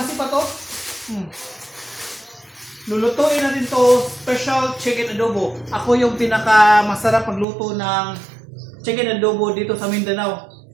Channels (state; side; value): drops out; left; at 7.5 s